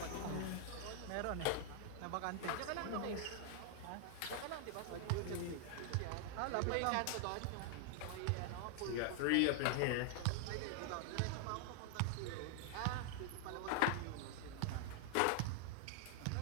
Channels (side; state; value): both; different; correlation 0.00